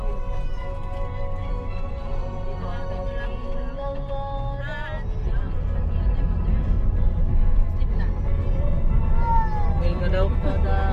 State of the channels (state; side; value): identical; both; correlation 1.00